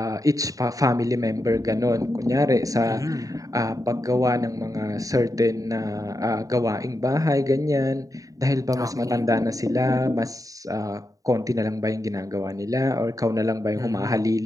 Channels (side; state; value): left; late; 0.16 ms